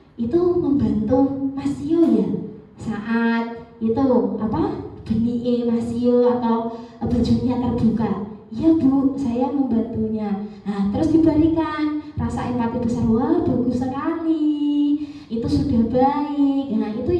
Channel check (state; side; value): identical; both; correlation 1.00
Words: itu membantu Mas Tio ya saat itu benih Mas Tio atau bajunya terbuka. Ya Bu, saya membantunya. Nah, terus diberikan rasa empati besar. Wah, bagus sekali. Itu sudah baik. Nah, itu